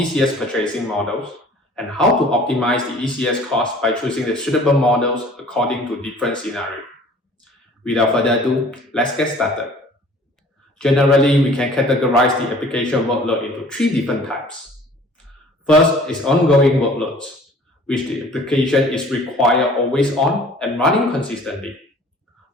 purchasing models and how to optimize the ECS cost by choosing the suitable models according to different scenarios. Without further ado, let's get started. Generally, we can categorize the application workload into three different types. First is ongoing workloads, which the application is required always on and running consistently.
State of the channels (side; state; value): both; normal; correlation 0.50